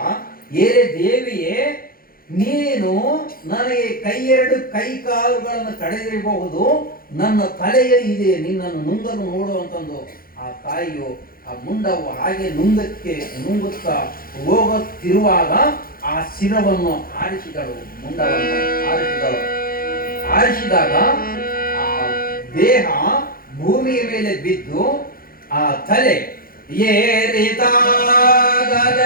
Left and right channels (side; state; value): right; late; 0.42 ms